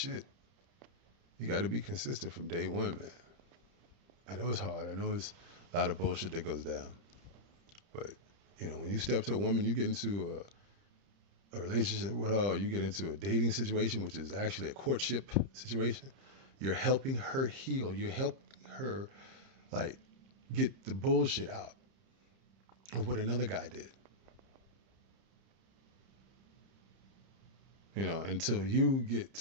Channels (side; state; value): left; late; 30 ms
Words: You got to be consistent from day one, man. I know it's hard. I know it's a lot of bullshit that goes down. But, when you step to a woman, you get into a relationship with her, you get into a dating situation, which is actually a courtship situation. You're helping her heal. You're helping her, like, get the bullshit out of what another guy did. Until you get